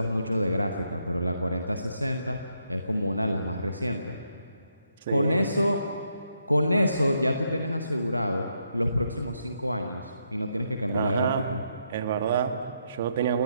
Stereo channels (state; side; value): inverted; both; correlation -0.78